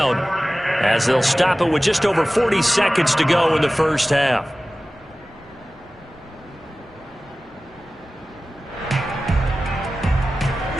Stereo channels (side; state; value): both; normal; correlation 0.97